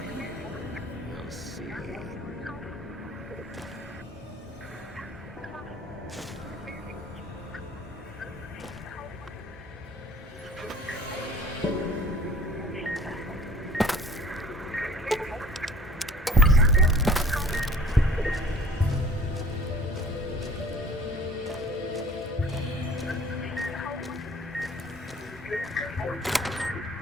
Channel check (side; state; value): both; normal; correlation 0.48